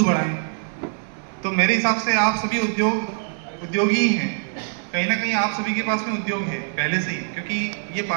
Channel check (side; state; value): left; silent; 56 dB below the other